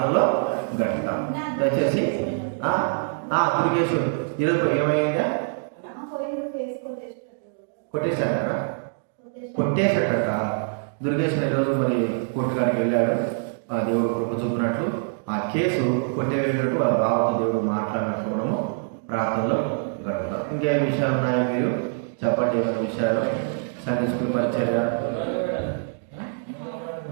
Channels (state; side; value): silent; left; digital silence